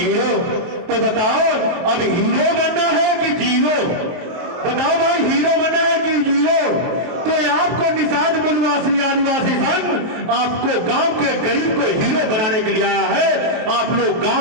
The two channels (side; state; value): left; late; 23 ms